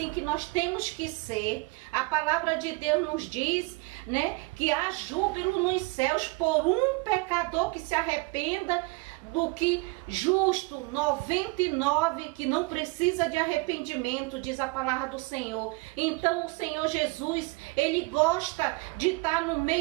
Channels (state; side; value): quieter; left; 26.0 dB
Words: que nós temos que ser. A palavra de Deus nos diz, né, que há júbilo nos céus por um pecador que se arrependa, do que justo 99 que não precisa de arrependimento, diz a palavra do Senhor. Então o Senhor Jesus, ele gosta de estar no